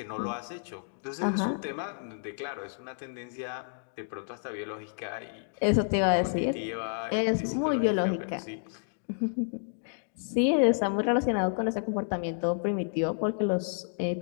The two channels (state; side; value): silent; right; digital silence